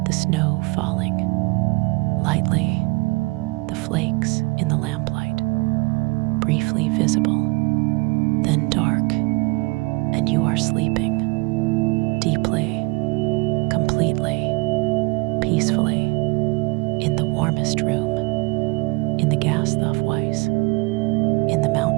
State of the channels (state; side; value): quieter; left; 26.7 dB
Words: The snow falling. Lightly, the flakes in the lamplight. Briefly visible, then dark, and you are sleeping. Deeply, completely, peacefully, in the warmest room, in the Gasthof-Weiss, in the